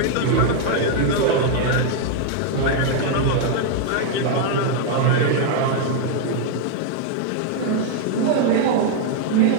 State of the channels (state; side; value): different; both; correlation 0.00